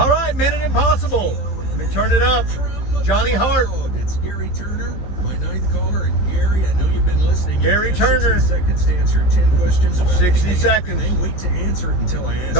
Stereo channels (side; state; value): right; late; 15 ms